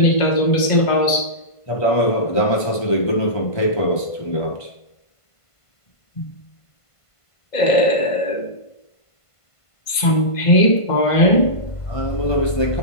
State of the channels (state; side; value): late; right; 1.5 ms